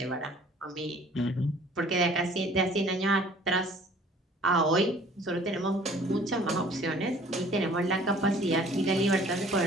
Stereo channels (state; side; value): normal; both; correlation 0.53